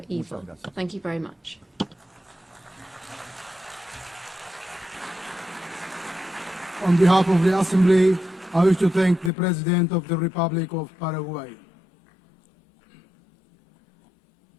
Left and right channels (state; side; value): drops out; right; at 9.3 s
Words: evil. Thank you very much. On behalf of the Assembly, I wish to thank the President of the Republic of Paraguay.